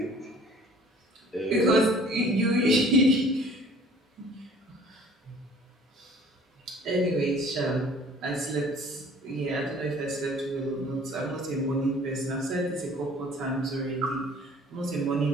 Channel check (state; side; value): normal; both; correlation 0.51